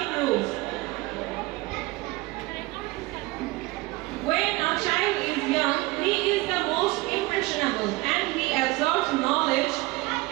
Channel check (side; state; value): left; quieter; 21.5 dB